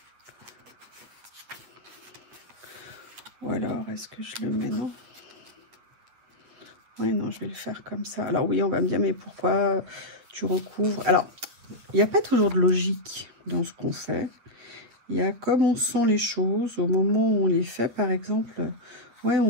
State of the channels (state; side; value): late; left; 8.7 ms